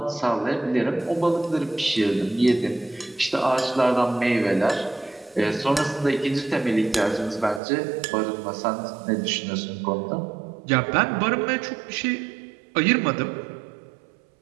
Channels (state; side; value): drops out; left; at 7.6 s